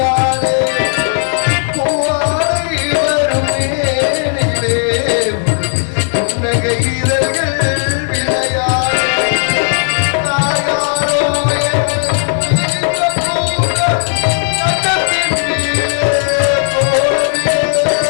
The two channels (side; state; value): right; silent; digital silence